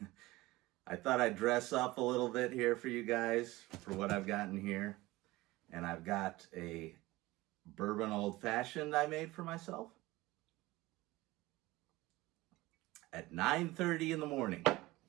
I thought I'd dress up a little bit here for you guys for what I've gotten here. And I've got a bourbon old fashioned I made for myself at 9:30 in the morning.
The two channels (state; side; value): quieter; left; 19.5 dB